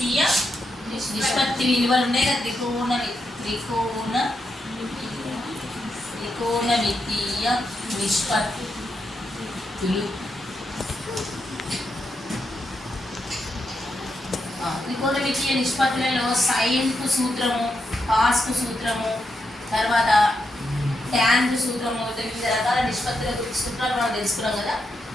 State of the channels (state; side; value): normal; both; correlation 0.83